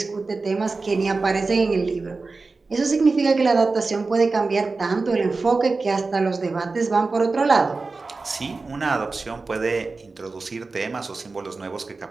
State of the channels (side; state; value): left; quieter; 3.9 dB